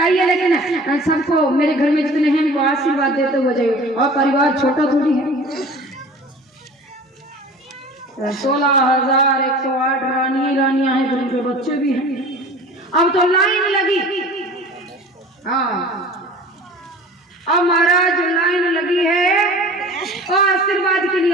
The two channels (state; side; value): normal; both; correlation 0.42